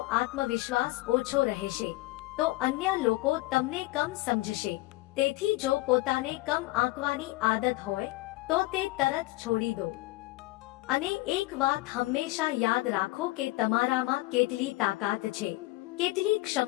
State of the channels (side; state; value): right; quieter; 20.0 dB